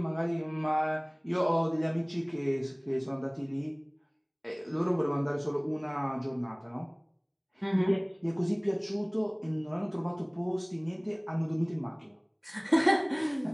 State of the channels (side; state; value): both; identical; correlation 1.00